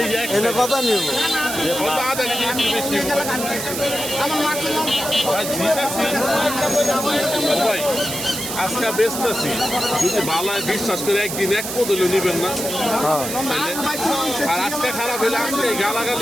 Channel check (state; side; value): noise; right; hiss, 5 dB below the sound